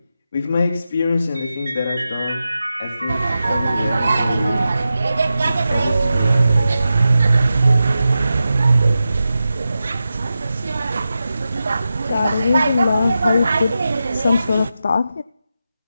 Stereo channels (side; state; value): both; inverted; correlation -0.91